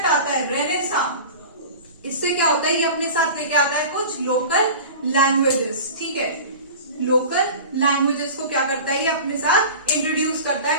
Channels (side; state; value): both; inverted; correlation -0.36